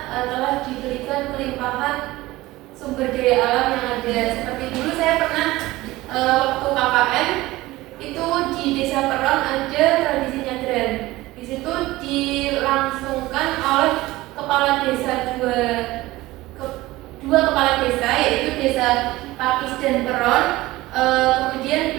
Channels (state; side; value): quieter; left; 18.5 dB